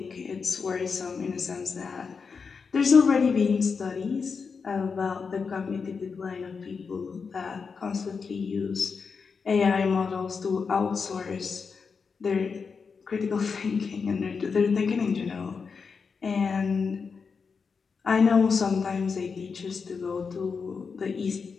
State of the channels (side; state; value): right; quieter; 5.4 dB